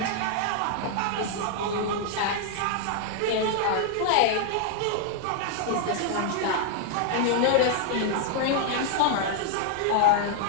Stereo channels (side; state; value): both; different; correlation 0.00